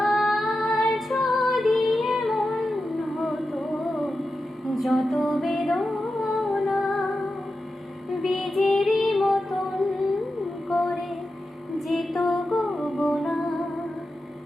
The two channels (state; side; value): normal; both; correlation 0.91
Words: যদি এমন হতো যত বেদনা বীজেরই মতন করে যেত গো বোনা।